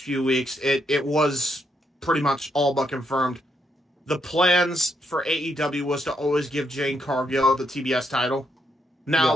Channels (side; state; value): both; normal; correlation 0.77